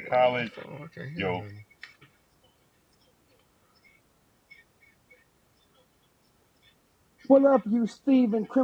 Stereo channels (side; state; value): both; identical; correlation 1.00